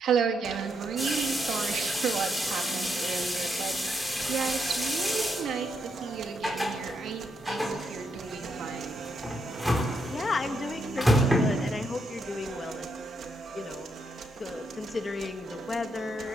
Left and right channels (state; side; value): normal; both; correlation 0.79